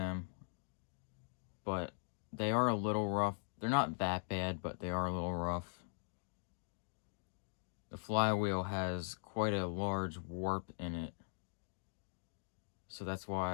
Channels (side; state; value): right; silent; digital silence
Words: but they are a little rough. They're not that bad, but they are a little rough. The flywheel has quite a large warp in it, so that's